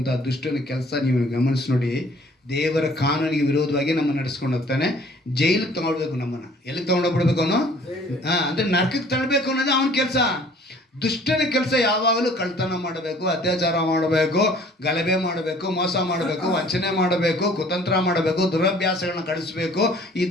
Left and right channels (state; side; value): normal; both; correlation 0.54